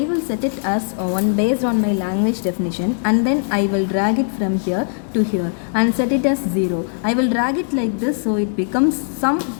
will set it as one based on my language definition, and then I will drag it from here to here and set it as 0. I will drag it like this so it becomes some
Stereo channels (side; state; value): right; silent; digital silence